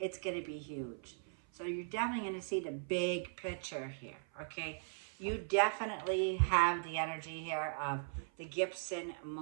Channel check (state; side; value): silent; left; 52 dB below the other